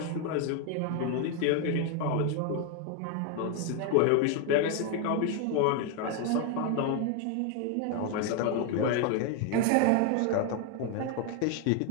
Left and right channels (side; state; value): both; different; correlation 0.01